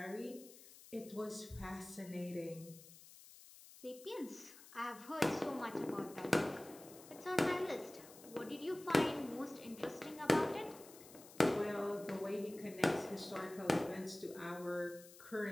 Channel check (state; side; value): noise; left; hiss, 18 dB below the sound